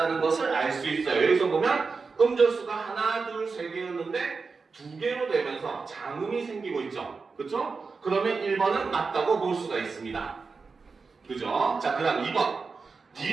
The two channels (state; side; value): quieter; left; 4.6 dB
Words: 것을 알 수 있어요. 여기서 보면 음절수가 하나, 둘, 세 개였는데 두 개로 되면서 장음이 생기고 있죠. 그쵸? 그러면 1번은 맞다고 볼 수가 있습니다. 그죠? 자, 그 다음 2번.